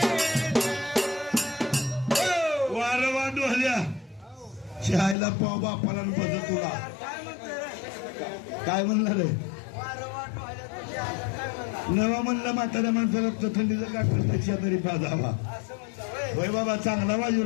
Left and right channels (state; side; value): drops out; right; at 5.2 s